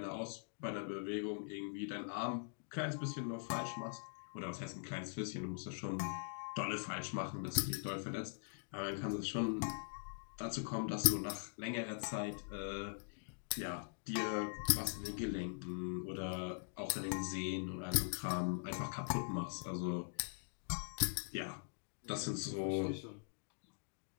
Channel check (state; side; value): silent; right; digital silence